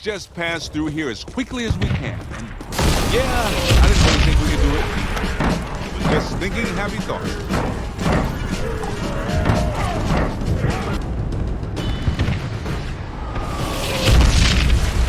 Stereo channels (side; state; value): both; identical; correlation 1.00